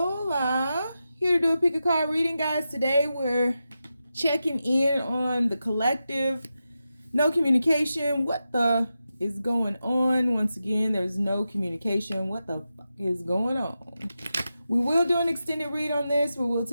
here to do a pick a card reading, guys. Today we're checking in on the collective. No communication. What the is going on? Once again, there's no communication. What the fuck is going on? We will do an extended read on this where we'll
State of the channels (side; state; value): both; inverted; correlation -0.90